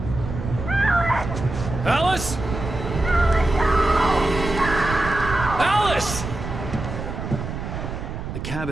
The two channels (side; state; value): right; noise; rumble, 7 dB below the sound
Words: Alice? Alice! The